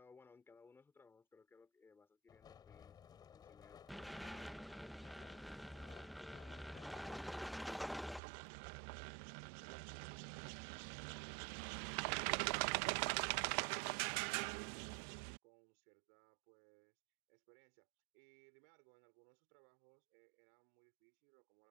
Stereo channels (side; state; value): left; drops out; at 8.2 s